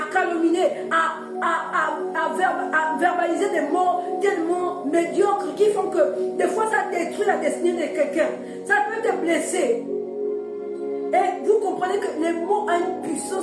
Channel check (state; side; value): identical; both; correlation 1.00